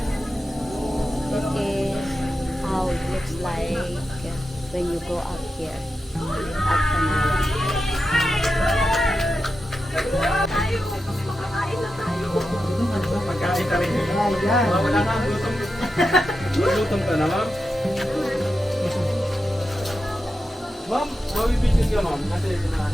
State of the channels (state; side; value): normal; both; correlation 0.90